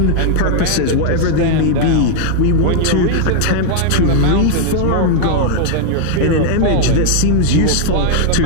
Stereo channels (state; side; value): different; both; correlation 0.00